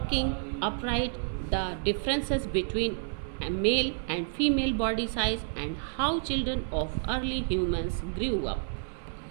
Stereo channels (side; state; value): left; silent; 58 dB below the other